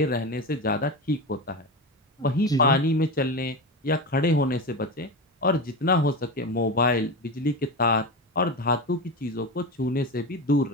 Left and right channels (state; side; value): normal; both; correlation 0.21